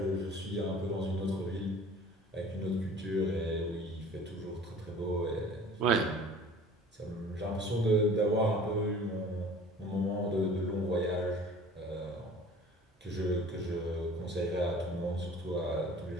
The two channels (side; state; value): both; normal; correlation 0.46